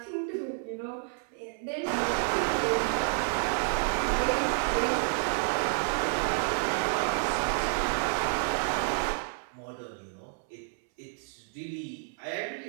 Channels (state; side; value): silent; left; 58 dB below the other